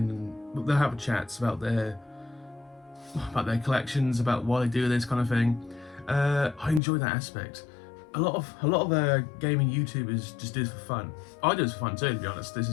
they'll have chats about their collections, about why they do this kind of thing. I enjoy that aspect. A lot of gaming YouTubers just do this for fun. I do this for fun too, to be honest. This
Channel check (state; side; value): drops out; right; at 6.8 s